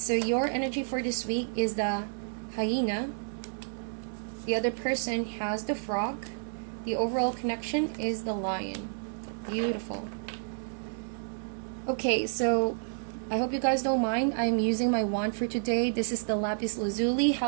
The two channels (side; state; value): left; silent; digital silence